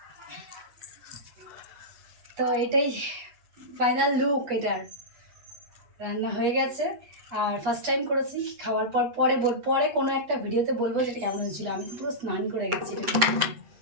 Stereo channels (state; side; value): late; left; 8.3 ms